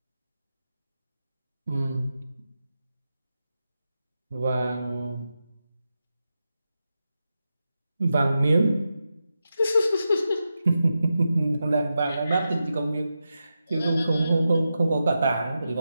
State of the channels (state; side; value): inverted; both; correlation -0.90